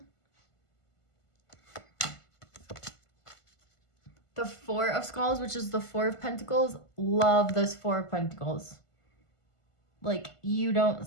The Four of Skulls, which is the Four of Pentacles. Love this Four of Pentacles. Like, you don't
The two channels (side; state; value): right; late; 1.5 ms